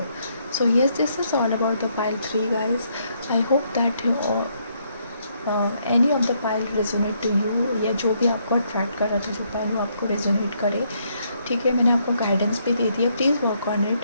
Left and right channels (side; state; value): both; inverted; correlation -0.73